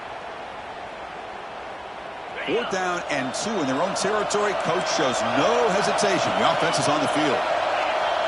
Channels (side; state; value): both; identical; correlation 1.00